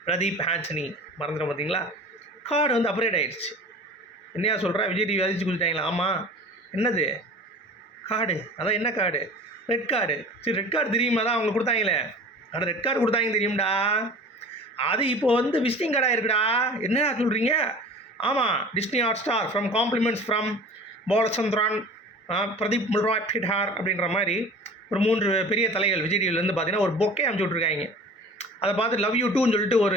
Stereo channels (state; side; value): normal; both; correlation 0.41